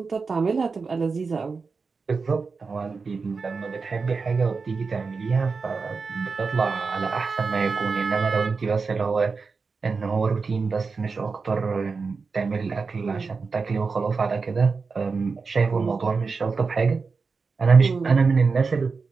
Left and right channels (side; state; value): left; quieter; 4.7 dB